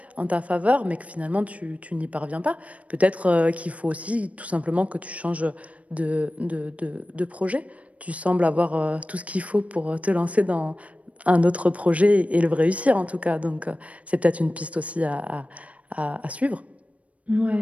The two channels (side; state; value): left; late; 0.066 ms